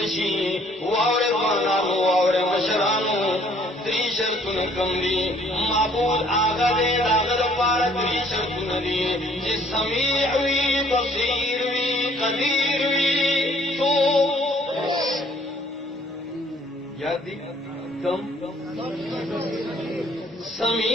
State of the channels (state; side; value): normal; both; correlation 0.60